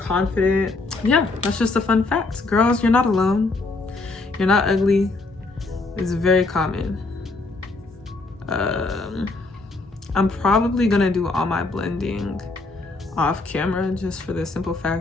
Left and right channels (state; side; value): quieter; right; 3.4 dB